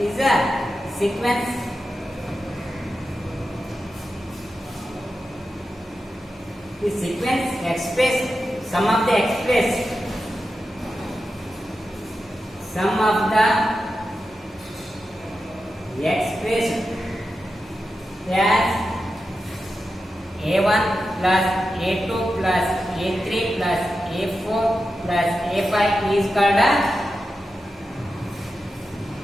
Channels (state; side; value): normal; both; correlation 0.90